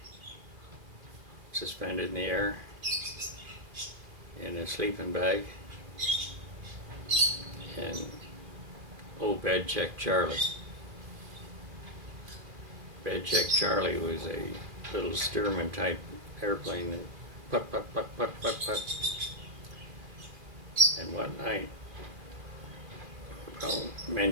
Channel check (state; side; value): late; left; 2.5 ms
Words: suspended in the air, in a sleeping bag, and Bed Check Charlie. Bed Check Charlie was a little Stearman type airplane that put, put, put, put, put, put. And one night, well,